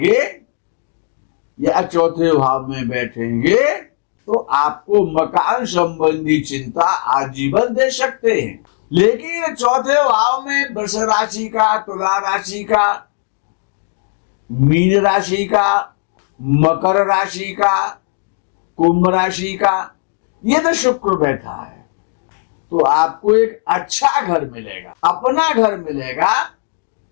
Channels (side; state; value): right; silent; digital silence